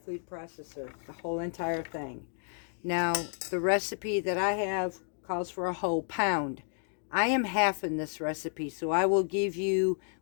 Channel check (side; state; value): right; silent; 57 dB below the other